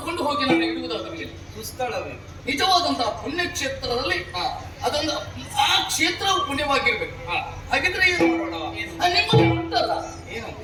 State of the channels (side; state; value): both; identical; correlation 1.00